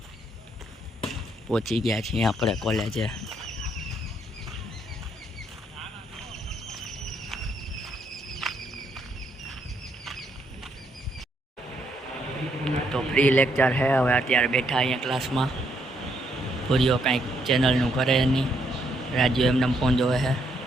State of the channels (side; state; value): both; normal; correlation 0.74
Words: પહોંચી ગયા છીએ આપણે કોલેજે. તો ફ્રી લેક્ચર છે. હવે અત્યારે બેઠા અહીંયા ક્લાસમાં. પૂરીઓ કાંઈક ચેનલનું કરે નહીં. રાજુ એમને ફોન જોવે છે.